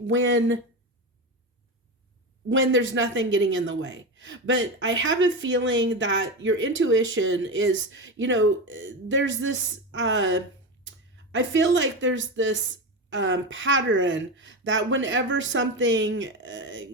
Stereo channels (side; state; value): both; normal; correlation 0.19